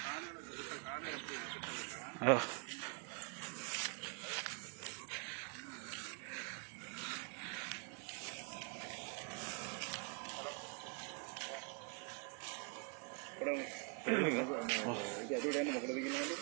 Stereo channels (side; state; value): left; quieter; 36.7 dB